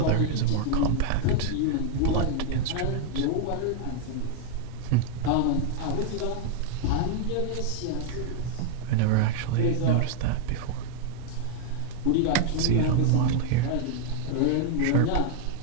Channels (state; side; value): different; both; correlation 0.00